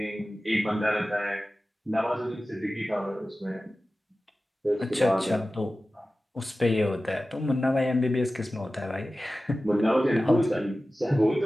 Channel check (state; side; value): normal; both; correlation 0.95